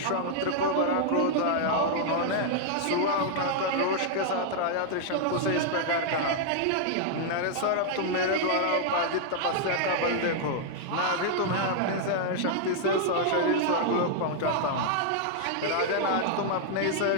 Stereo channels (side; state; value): both; different; correlation -0.01